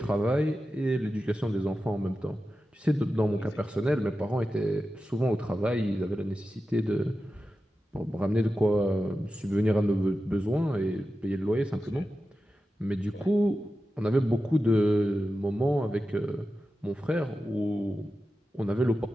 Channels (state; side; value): normal; both; correlation 0.92